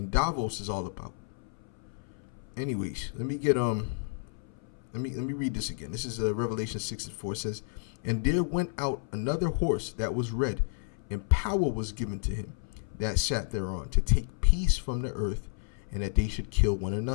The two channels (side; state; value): right; silent; 57 dB below the other